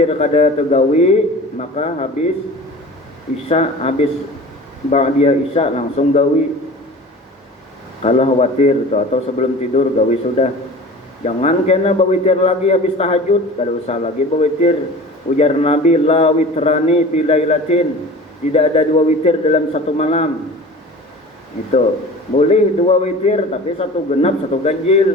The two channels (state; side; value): normal; both; correlation 0.39